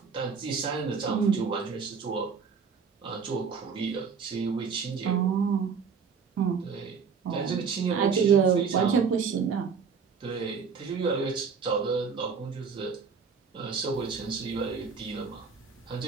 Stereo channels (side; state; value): left; quieter; 5.9 dB